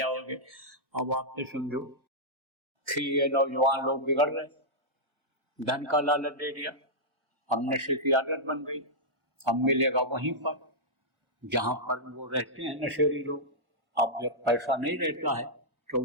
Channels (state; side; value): late; left; 1.4 ms